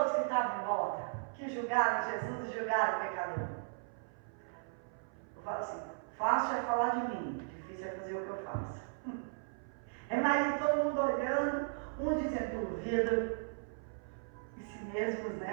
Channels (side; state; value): left; silent; 53 dB below the other